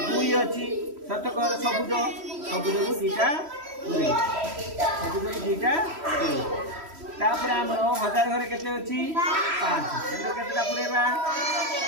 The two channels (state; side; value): late; left; 3.1 ms